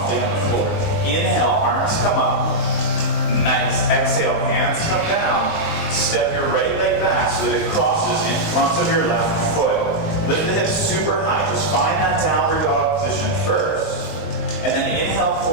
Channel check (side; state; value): right; late; 20 ms